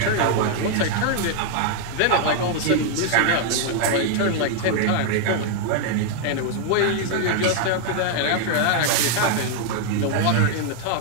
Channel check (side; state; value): both; different; correlation 0.00